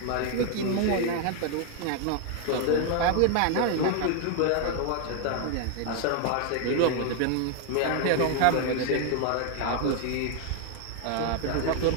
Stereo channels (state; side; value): different; both; correlation 0.00